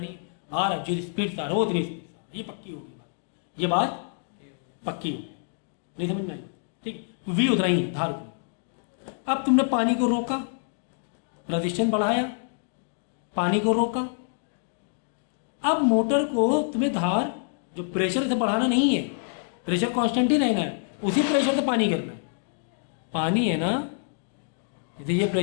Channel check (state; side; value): silent; right; digital silence